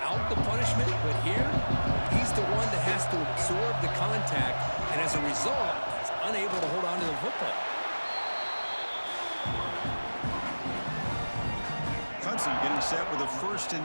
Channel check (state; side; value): inverted; both; correlation -1.00